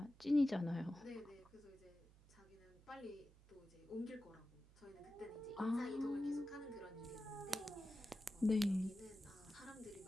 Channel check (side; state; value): right; noise; hum, 23 dB below the sound